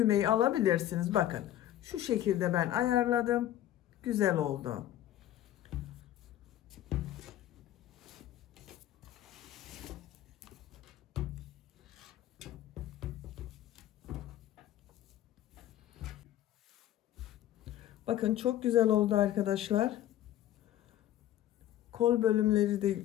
alabilirsiniz. Bakın şu şekilde ben ayarladım. Güzel oldu. Bakın çok güzel oldu arkadaşlar. Kol bölümleri de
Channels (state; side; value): quieter; right; 12.7 dB